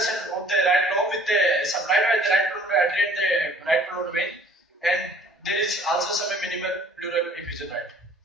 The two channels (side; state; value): both; normal; correlation 0.55